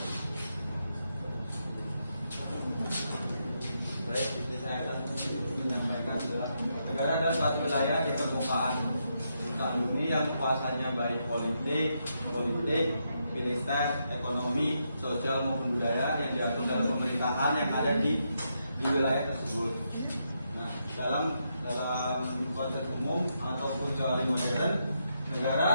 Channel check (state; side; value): inverted; both; correlation -0.81